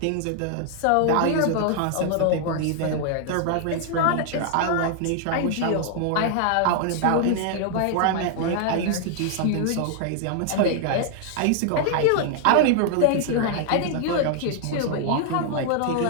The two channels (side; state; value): both; different; correlation 0.00